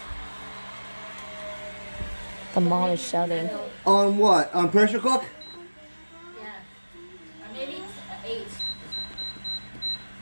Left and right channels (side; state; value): both; inverted; correlation -1.00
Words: The mom is shouting. On what? On pressure cook? Yeah. Or maybe 8.